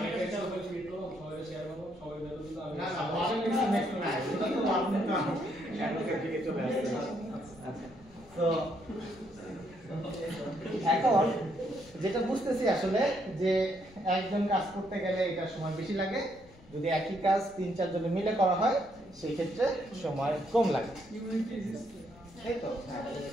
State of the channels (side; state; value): left; noise; rumble, 24 dB below the sound